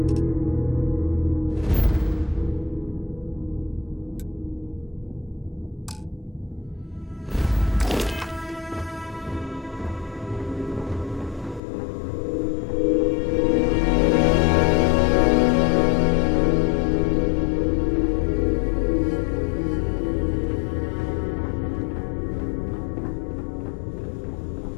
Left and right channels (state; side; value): drops out; right; at 11.6 s